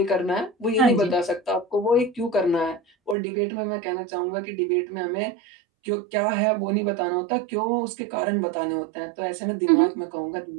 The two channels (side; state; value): left; drops out; at 3.2 s